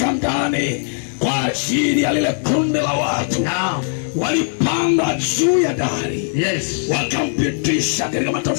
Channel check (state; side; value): silent; right; digital silence